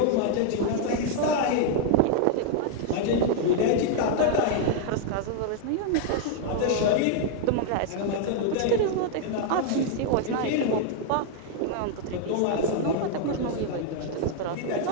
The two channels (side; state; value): both; different; correlation 0.00